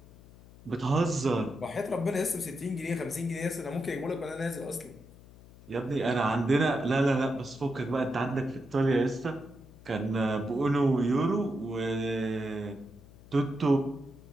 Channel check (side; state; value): left; noise; hum, 21 dB below the sound